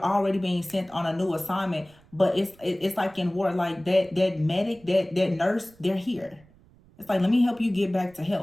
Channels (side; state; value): right; noise; rumble, 28 dB below the sound